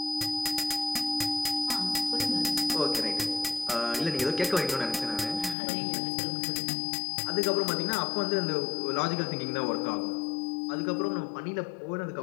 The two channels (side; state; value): right; drops out; at 5.6 s